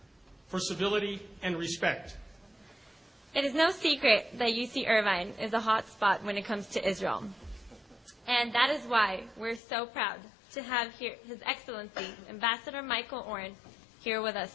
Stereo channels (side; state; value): right; drops out; at 9.6 s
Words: for civility and respect. It is no secret that UC Irvine is a hot spot when it comes to Israel. And that is why we're so proud to have here His Excellency, Ambassador Michael Oren, here with